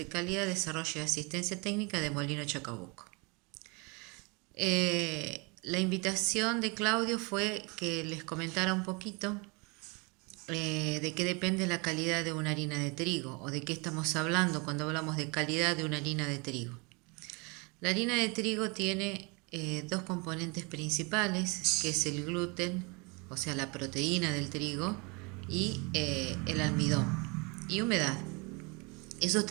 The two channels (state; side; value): quieter; left; 29.6 dB